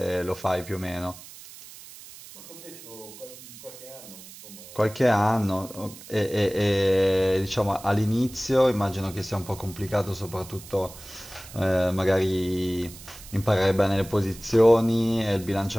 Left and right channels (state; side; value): noise; right; hiss, 17 dB below the sound